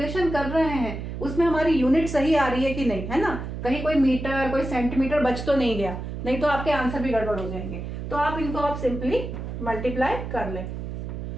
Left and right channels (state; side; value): noise; right; hum, 7 dB below the sound